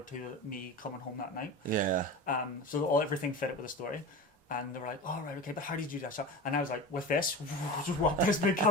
to me coming home that night. Yeah. So everything fit it with the story. And they were like, "Oh right, okay, but how did you do that shot?" And I was like, "With this, just walk this big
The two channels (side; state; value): both; normal; correlation 0.30